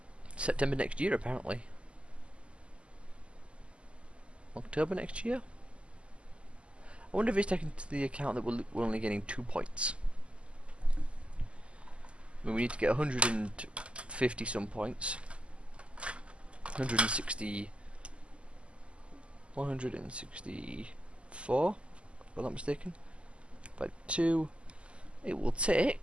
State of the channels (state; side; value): late; left; 0.055 ms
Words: September next year, apparently. October next year? I wonder if it's taken into the account that we're only getting 2 points. I mean, we need to get 150 some points. 160... 164, if I'm not mistaken. By 2, it will